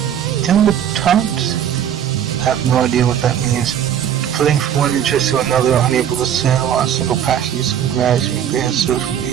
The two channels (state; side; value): quieter; left; 9.6 dB